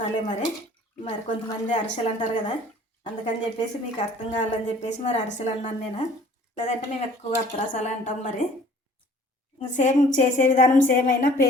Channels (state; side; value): normal; both; correlation 0.52